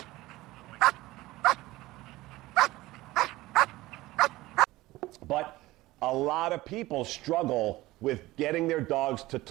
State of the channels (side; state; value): left; quieter; 18.4 dB